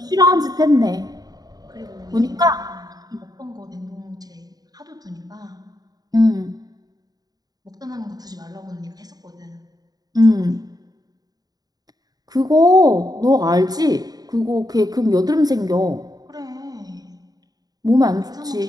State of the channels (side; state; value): left; late; 0.19 ms